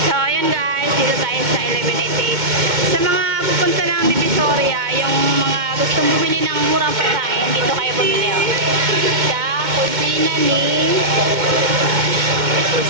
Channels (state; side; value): late; left; 2.1 ms